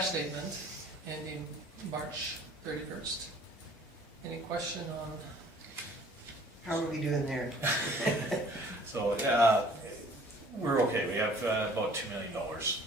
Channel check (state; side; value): normal; both; correlation 0.53